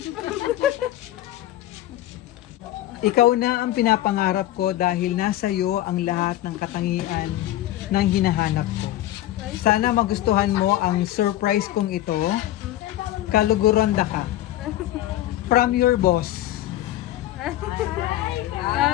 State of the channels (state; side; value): quieter; right; 14.3 dB